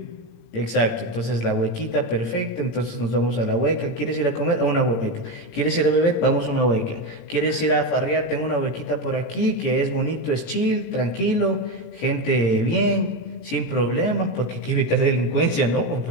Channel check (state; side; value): late; right; 17 ms